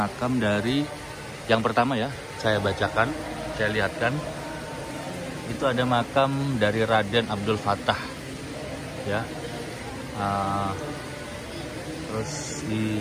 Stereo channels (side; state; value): both; identical; correlation 1.00